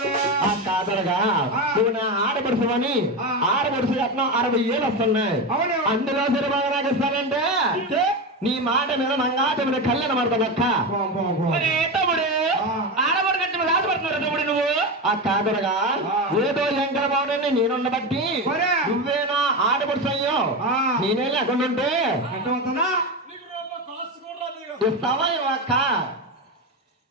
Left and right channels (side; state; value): both; normal; correlation 0.18